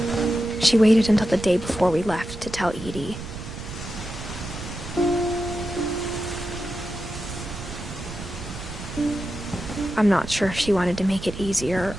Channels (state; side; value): noise; right; rumble, 10 dB below the sound